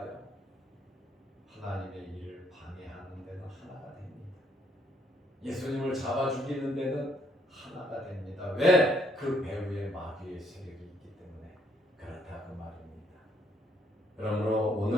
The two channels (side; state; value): both; normal; correlation 0.69